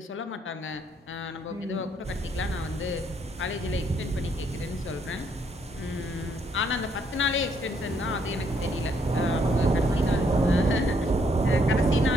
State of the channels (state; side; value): normal; both; correlation 0.71